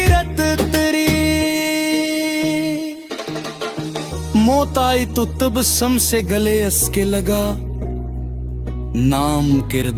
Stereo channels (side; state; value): both; identical; correlation 1.00